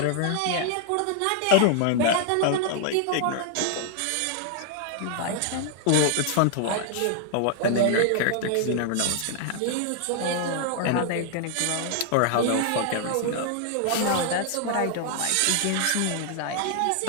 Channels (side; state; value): both; different; correlation 0.00